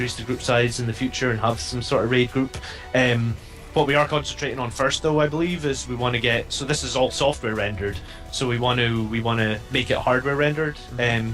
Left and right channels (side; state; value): both; identical; correlation 1.00